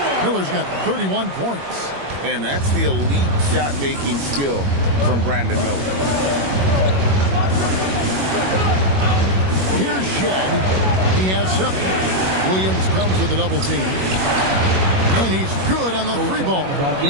Miller's got 31 points. And that's the elite shot-making skill from Brandon Miller. Here's Shed. He has 7. Williams comes with the double team. And he's good on the 3-ball.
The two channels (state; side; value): late; left; 21 ms